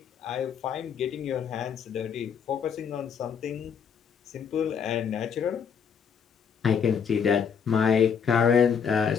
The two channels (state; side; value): quieter; right; 7.0 dB